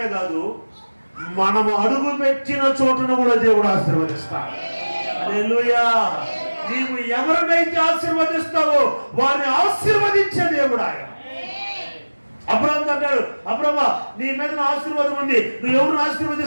కాదు, మనము అడుగు పెట్టిన చోటును కూడా దేవుడు ఆశీర్వదిస్తాడు. హల్లెలూయా. నీవు ఎవరినైతే ఆశీర్వదిస్తావో వారిని ఆశీర్వదించే దేవుడు ఆయన. అబ్రహాము అంటాడు, అబ్రహ్మ నీ మీద ఆశీర్వాదం ఉంది, నువ్వు ఎవరిని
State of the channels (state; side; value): inverted; both; correlation -1.00